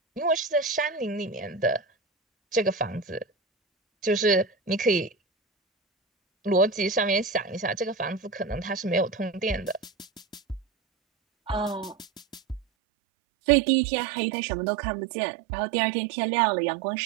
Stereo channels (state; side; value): drops out; left; at 12.6 s